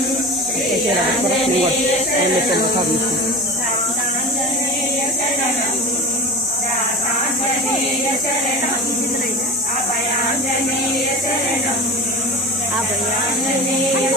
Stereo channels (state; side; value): normal; both; correlation 0.31